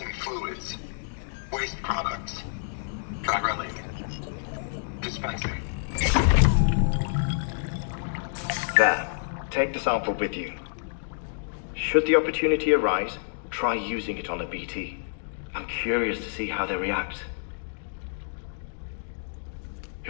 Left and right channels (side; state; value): right; silent; digital silence